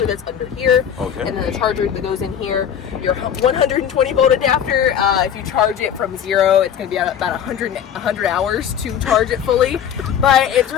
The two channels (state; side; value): quieter; right; 8.9 dB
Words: that's under here, and then the charger that goes in here. Your 120 volt adapter, if you charge it from 0, it's going to be about 100 hours to charge it fully, but it's